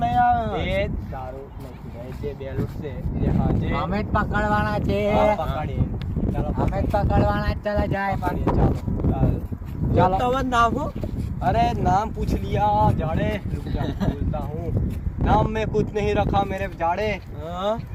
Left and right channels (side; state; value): both; identical; correlation 1.00